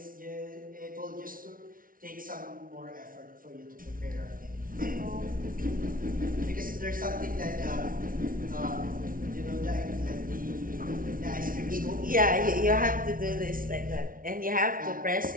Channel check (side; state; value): left; late; 0.41 ms